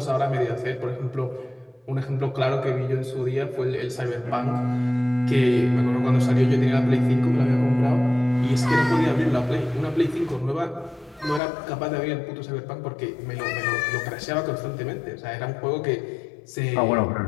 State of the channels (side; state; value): right; drops out; at 11.4 s